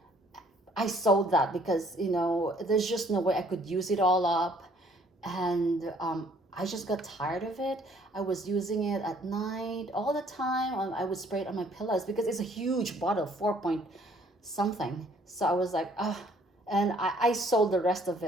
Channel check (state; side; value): normal; both; correlation 0.61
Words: I sold that because, you know, there's just no way I could use it all up. And I just got tired of it. I was using it at night all the time. I would spray it on my pillows because it's a huge bottle, 4 point something. So I was like, and I sold the rest of